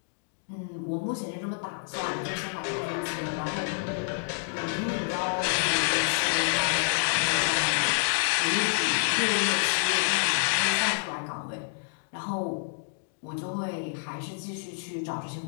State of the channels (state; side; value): silent; right; digital silence